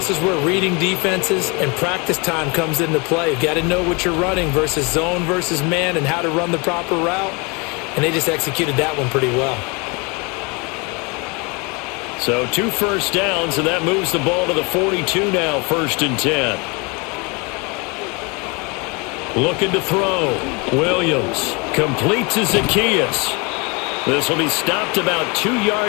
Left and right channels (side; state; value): right; quieter; 29.6 dB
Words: is where reading defenses and practice time comes into play. You've got to know what you're running versus zone versus man and how to run the proper route. And they just executed that one pretty well. So 2 first downs, and that moves the ball to the 42 now, 1st and 10. Looking to throw. Williams completes to Zacchaeus. This will be stopped about 2